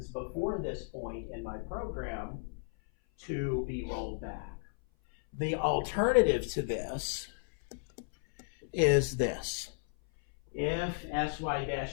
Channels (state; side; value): silent; right; 55 dB below the other